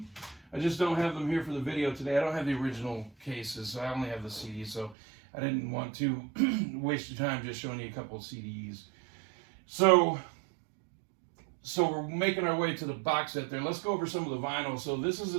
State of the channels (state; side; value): drops out; left; at 5.0 s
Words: I just don't have them here for the video today. I don't have the original cases, so I only have the CDs. So I didn't want to waste your time just showing you a couple of CDs. So we're making our way to the box set there. Let's go over some of the vinyl. So this is